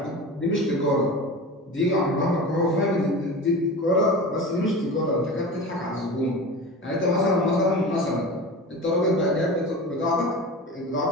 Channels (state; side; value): normal; both; correlation 0.31